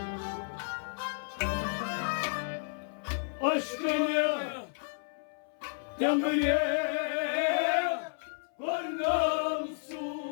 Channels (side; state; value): right; silent; 56 dB below the other